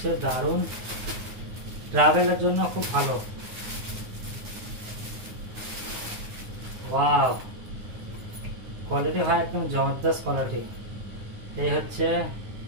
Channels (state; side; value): late; left; 9.6 ms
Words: দারুণ, ট্রাভেলের জন্য খুব ভালো। ওয়াও, কোয়ালিটি ভাই একদম জবরদস্ত কোয়ালিটি। এই হচ্ছে